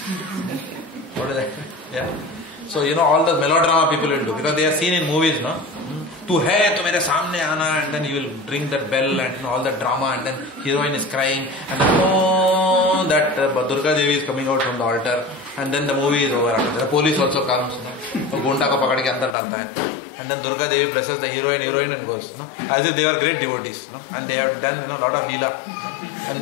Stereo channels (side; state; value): right; drops out; at 19.4 s